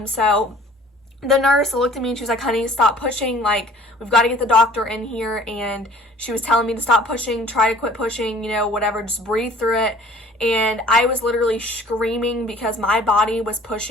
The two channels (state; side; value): normal; both; correlation 0.51